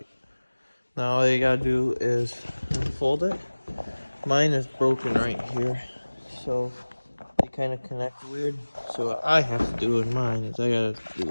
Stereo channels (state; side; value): inverted; both; correlation -1.00